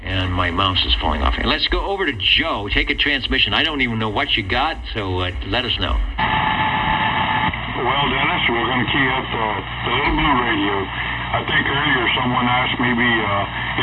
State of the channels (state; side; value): identical; both; correlation 1.00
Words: And my mouse is falling off. And let's go over to Joe. Take a transmission. I don't even know what you got, so let us know. Well, Dennis, we're going to key up the little blue radio. I think earlier someone asked maybe